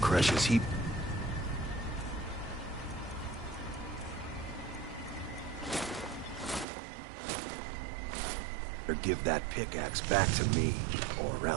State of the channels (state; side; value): drops out; left; at 6.7 s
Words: he... Or give that pickaxe back to me, or